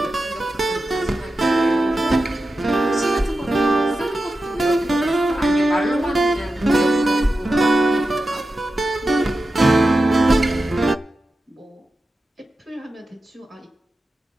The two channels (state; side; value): normal; both; correlation 0.92